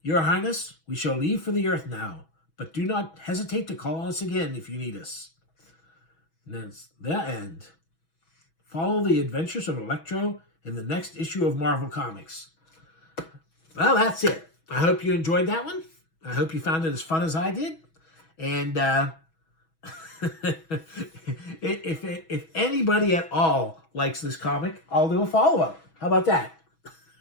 Your Highness, we shall leave for the Earth now, but do not hesitate to call on us again if you need us. And that's the end. Follow the adventures of ELECTRO in the next issue of Marvel Comics. Well, that's it. I hope you enjoyed that one. I hope you found it as fun as I did. And if anybody at all likes this comic, I'll do a follow-up. How about that?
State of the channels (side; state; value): right; late; 6.2 ms